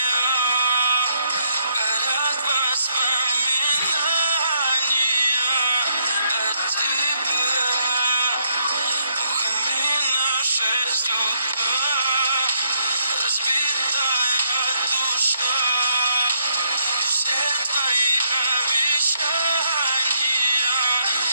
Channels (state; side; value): inverted; both; correlation -0.75